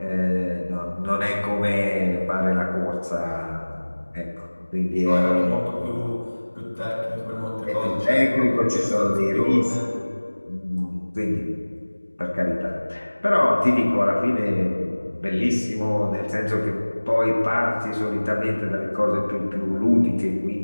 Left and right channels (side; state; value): both; inverted; correlation -1.00